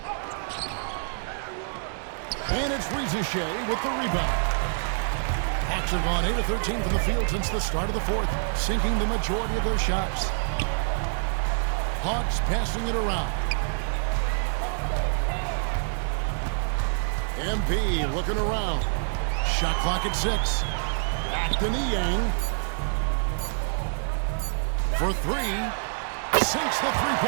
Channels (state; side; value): silent; left; digital silence